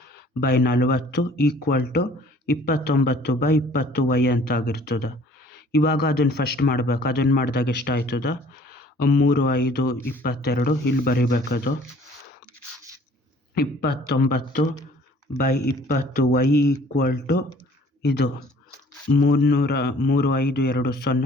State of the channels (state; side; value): normal; both; correlation 0.54